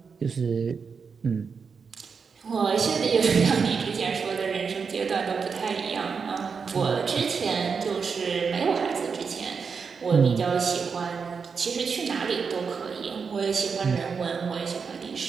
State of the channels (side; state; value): left; quieter; 5.7 dB